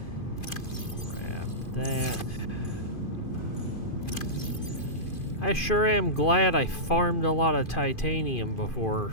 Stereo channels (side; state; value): right; late; 2.5 ms